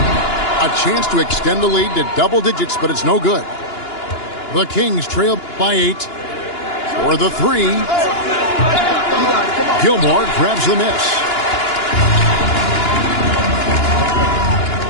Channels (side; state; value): right; late; 2.9 ms